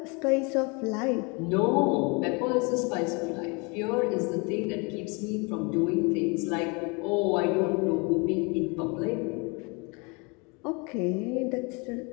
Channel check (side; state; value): right; quieter; 30.3 dB